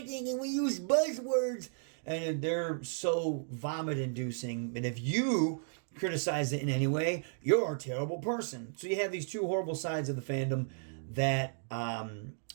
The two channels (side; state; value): left; silent; digital silence